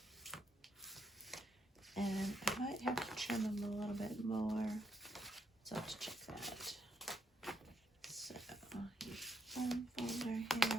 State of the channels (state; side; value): normal; both; correlation 0.77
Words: And I might have to trim them a little bit more, so I'll have to check that. So, one folder